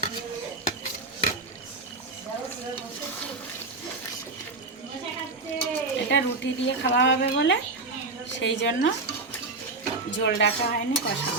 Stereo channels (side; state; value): left; quieter; 3.6 dB